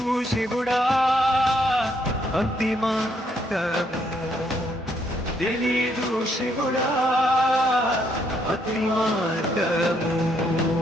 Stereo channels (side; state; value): both; normal; correlation 0.72